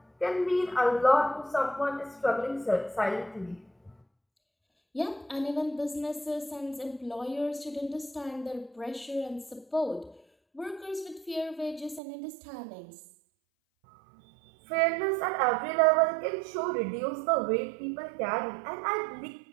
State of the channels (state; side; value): drops out; left; at 12.0 s